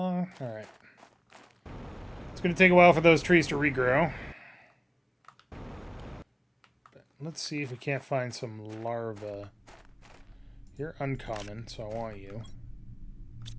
right. It's going to take a while for those trees to regrow. But let's see if we can't find some larvae. You're uncommon, so I want you.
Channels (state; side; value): identical; both; correlation 1.00